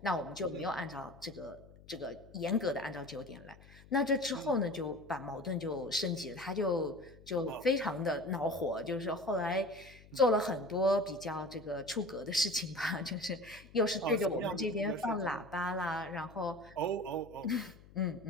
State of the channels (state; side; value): noise; left; hum, 22 dB below the sound